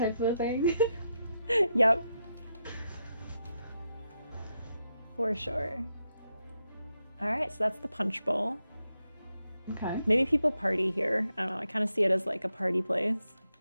of a thing. Yep. For sure. All right, so that's the punch bowl. Okay. Maybe people party here. I don't know. I kind of see it as like a party place.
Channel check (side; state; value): both; inverted; correlation -0.84